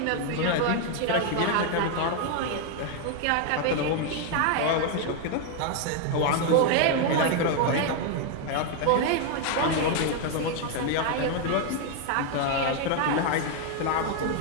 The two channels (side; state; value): both; different; correlation 0.01